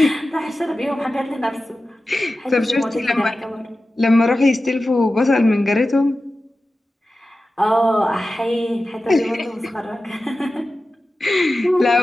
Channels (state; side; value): normal; both; correlation 0.94